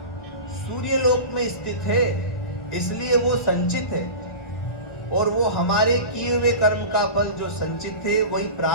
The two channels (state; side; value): late; right; 1.6 ms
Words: सूर्यलोक में स्थित है, इसलिए वो संचित है। और वो हमारे किए हुए कर्म का फल जो संचित है वही